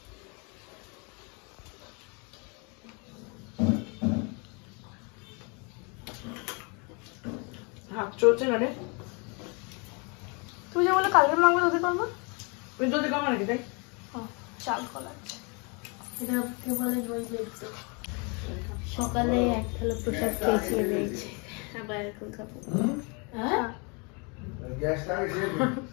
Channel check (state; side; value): quieter; right; 32.5 dB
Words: হাত চলছে না রে। তুমি যে বলে কালকে মাংস দধি করবো, ওই যদি কমা নাকি তাই চাল কলা এটা কে বলে দই বেলতে। সকালে এক থালা প্রসাদ খেয়েছি রয়েছে, আবার এখন খাবো। হ্যাঁ